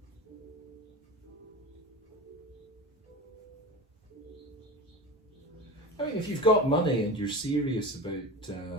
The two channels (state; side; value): normal; both; correlation 0.29